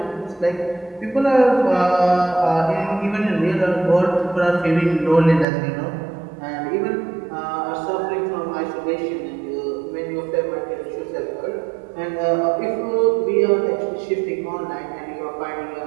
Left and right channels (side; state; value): left; drops out; at 5.5 s